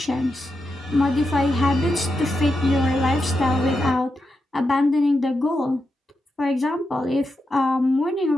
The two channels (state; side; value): normal; both; correlation 0.87